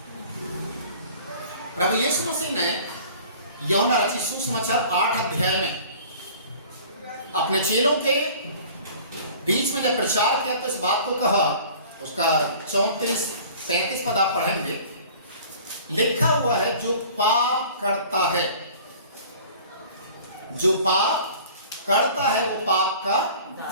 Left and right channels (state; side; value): inverted; both; correlation -0.46